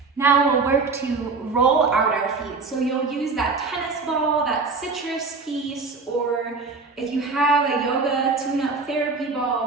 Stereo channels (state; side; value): quieter; left; 4.2 dB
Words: Now we'll work to roll out our feet. So you'll use that tennis ball, that citrus piece, or if you have a yoga tune-up therapy